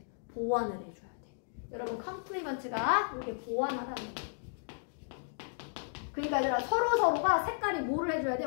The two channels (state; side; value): silent; right; digital silence